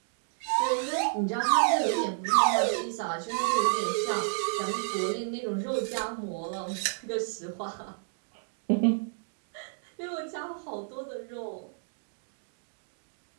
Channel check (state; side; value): silent; left; digital silence